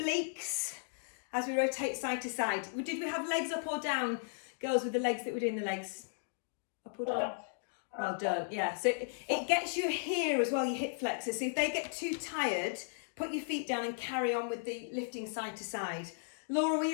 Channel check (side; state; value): right; silent; digital silence